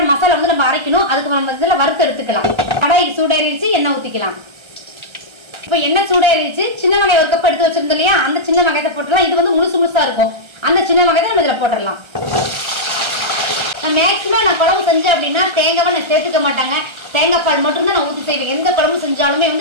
மசாலா வந்து நம்ம அரைக்கணும். அதுக்கு நம்ம இதுல வறுத்து எடுத்துக்கலாம். கடாய் சூடாயிருச்சு, எண்ணெய் ஊத்திக்கலாம். இப்போ எண்ணெய் சூடாயிருச்சு, சின்ன வெங்காயம் 1 கப் எடுத்து வச்சிருந்தோம் இல்லையா, அந்த சின்ன வெங்காயத்தை போட்டுடலாம். இது வந்து முழுசா இருக்கும். அந்த சின்ன வெங்காயத்தை நம்ம இதுல போட்டுடலாம். மேக்சிமம் நான் குழம்பு செஞ்சேன் அப்படின்னா தேங்காய் நான் சேர்த்துக்க மாட்டாங்க. தேங்காய் பால் மட்டும் தான் நான் ஊற்றி செய்வேன். எந்த குழம்பு செஞ்சாலுமே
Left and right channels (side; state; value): left; late; 1.3 ms